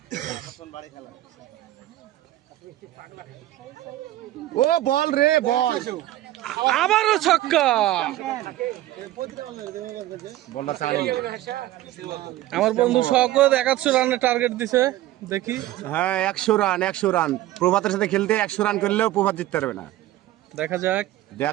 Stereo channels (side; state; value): left; quieter; 15.1 dB